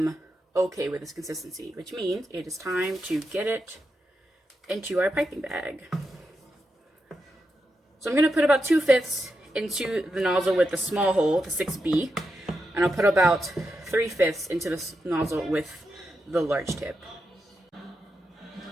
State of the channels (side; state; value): both; normal; correlation 0.87